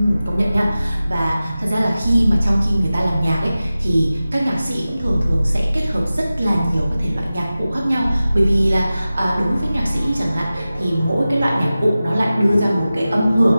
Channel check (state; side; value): inverted; both; correlation -0.96